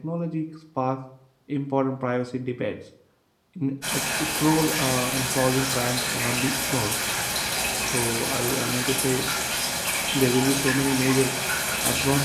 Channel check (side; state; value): both; identical; correlation 1.00